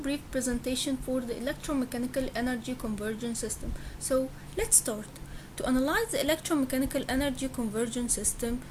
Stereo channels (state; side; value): identical; both; correlation 1.00